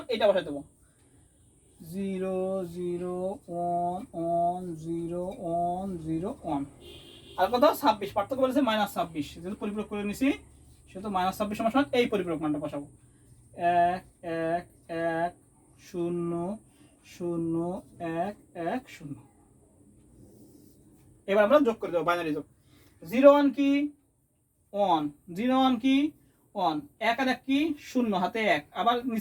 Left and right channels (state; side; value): identical; both; correlation 1.00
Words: এটা বসাই দেবো, 0 0 1 1 0 1 0 1। আর কত 26, পার্থক্য বলেছে -26, যেহেতু পরিপূরক করে নিছি সেহেতু -26 সমান সমান এই পরিপূরক মানটা বসাবো, 1 1 1 0 0 1 1 0। এবার আমরা যোগ করে দেবো, বাইনারি যোগ, 0 1 কি 1, 0 1 কি 1, 1 আর 1 কি 0 হাতে 1, আবার